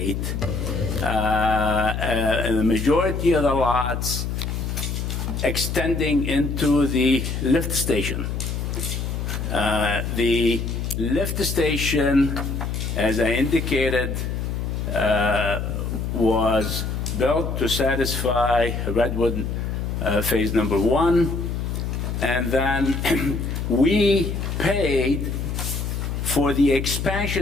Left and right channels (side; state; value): left; noise; hum, 3 dB below the sound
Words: the majority of the lots extending into the lift station. The lift station, as I indicated, was built to satisfy Redwood Phase Number 1, and then we paid for the